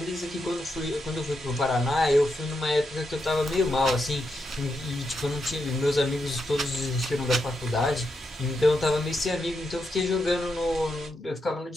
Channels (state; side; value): normal; both; correlation 0.84